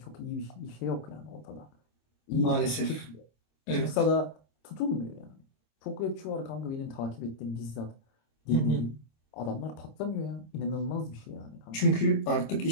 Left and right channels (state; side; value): late; right; 26 ms